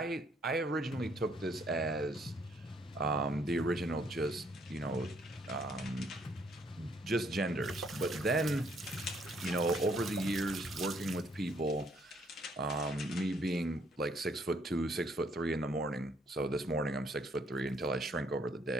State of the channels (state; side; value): normal; both; correlation 0.67